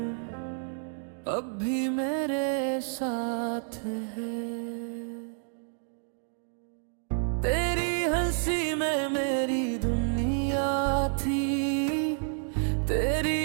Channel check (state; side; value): silent; left; digital silence